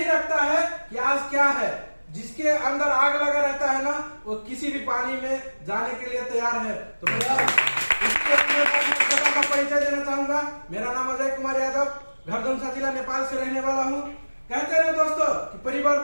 रखता है कि आज क्या है, जिसके अंदर आग लगा रहता है ना, वो किसी भी पानी में जाने के लिए तैयार है। तो का परिचय देना चाहूंगा। मेरा नाम अजय कुमार यादव, घरधुमसा जिला नेपाल से रहने वाला हूँ। कहते हैं दोस्तों कि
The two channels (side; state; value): both; inverted; correlation -1.00